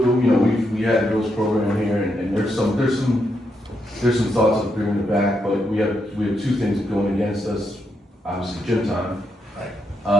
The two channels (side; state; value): both; normal; correlation 0.81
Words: we had a girls' program here, and there's some thoughts of bringing it back, but we have 2 things going against us. Obviously, gym time.